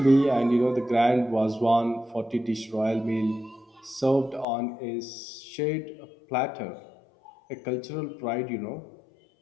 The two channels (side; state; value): right; drops out; at 4.5 s